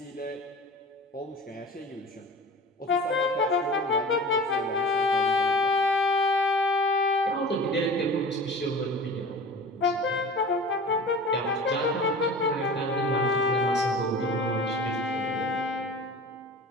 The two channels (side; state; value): both; normal; correlation 0.38